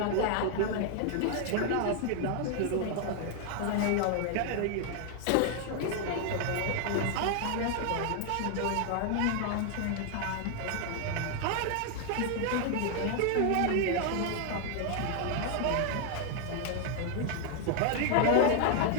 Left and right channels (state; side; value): different; both; correlation 0.00